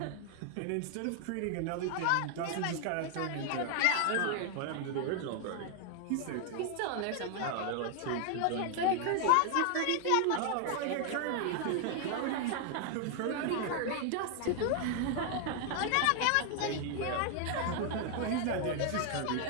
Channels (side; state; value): both; different; correlation 0.00